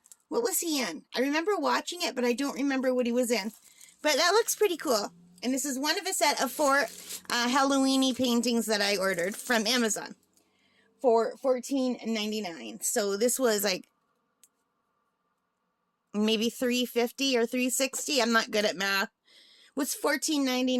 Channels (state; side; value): identical; both; correlation 1.00